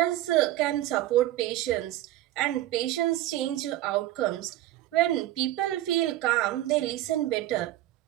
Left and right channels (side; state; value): left; quieter; 14.5 dB